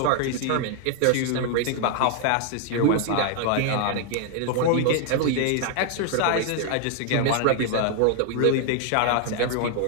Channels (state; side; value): different; both; correlation 0.00